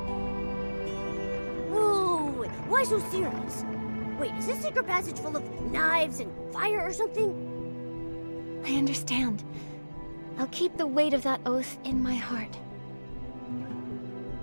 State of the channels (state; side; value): inverted; both; correlation -1.00